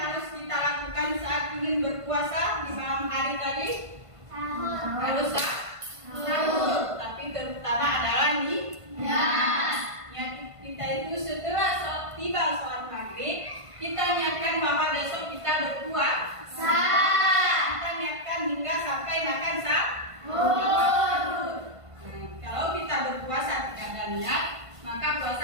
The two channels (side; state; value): left; late; 1.5 ms